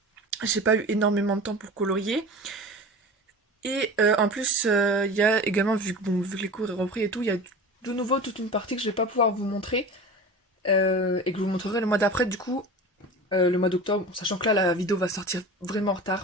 j'ai pas eu énormément de temps pour colorier. Et en plus il y a également, vu que les cours ont repris et tout, il y a de nouveau toute une partie que je vais pas pouvoir vous montrer. Et que je vous montrerai le mois d'après du coup. Le mois d'octobre, sachant que là la vidéo va sortir vraiment en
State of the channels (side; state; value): both; normal; correlation 0.34